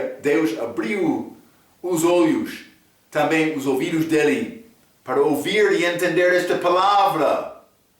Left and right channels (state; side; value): identical; both; correlation 1.00